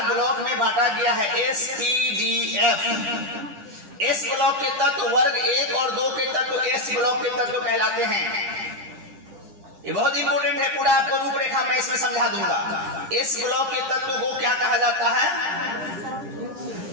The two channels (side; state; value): left; late; 9.9 ms